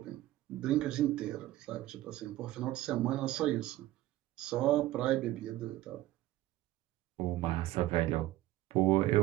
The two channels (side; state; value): left; quieter; 15.7 dB